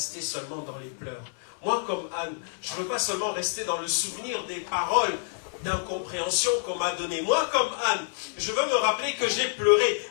seulement dans les pleurs. Moi comme Anne, je ne veux pas seulement rester dans le souvenir des paroles d'incompréhension qu'on m'a données. Moi comme Anne, je veux me rappeler que j'ai pleuré,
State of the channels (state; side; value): silent; right; digital silence